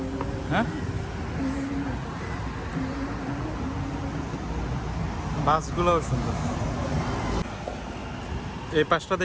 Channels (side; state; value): both; identical; correlation 1.00